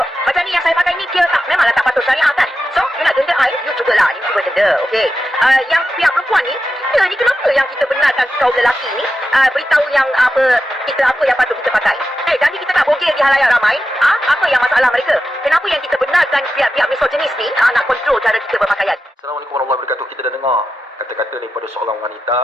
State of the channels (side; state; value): both; normal; correlation 0.90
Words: macam ni yang saya pakai ni, dia memanglah tak patut syariah kan? So you nak denda you jugalah, you juga denda. Okay? Yang pihak perempuan ni, kita ni kenapa yang kita benarkan kaum lelaki ni beritahu yang apa yang patut kita pakai? Jadi kita tak bogel di halayak ramai. Apa yang masalah mereka? Kenapa yang kita benarkan pihak-pihak misoginis ni nak kontrol cara kita berpakaian? Assalamualaikum warahmatullahi wabarakatuh. Kita dah dengar kata-kata daripada seorang wanita